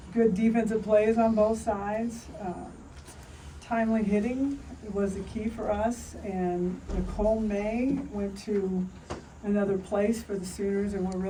good defensive plays on both sides. Timely hitting was the key for us, and Nicole May went to another place for the Sooners, and we're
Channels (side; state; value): both; identical; correlation 1.00